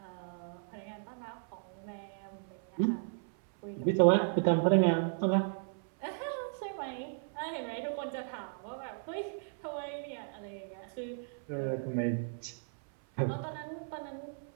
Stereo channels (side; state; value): left; silent; 54 dB below the other